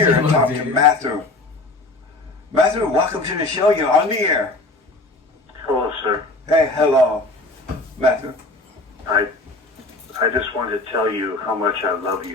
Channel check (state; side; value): quieter; right; 3.0 dB